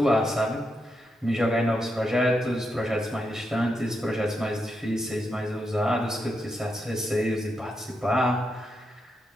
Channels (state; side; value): normal; both; correlation 0.84